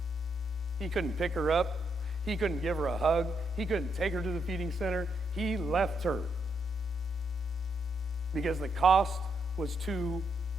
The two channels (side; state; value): both; normal; correlation 0.79